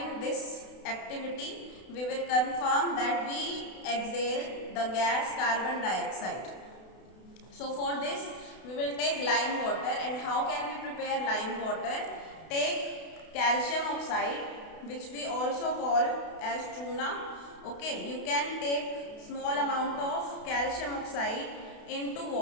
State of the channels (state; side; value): late; right; 32 ms